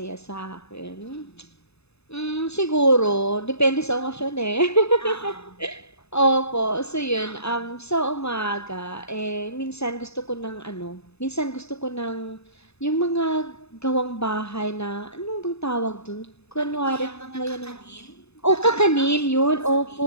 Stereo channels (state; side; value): late; right; 0.79 ms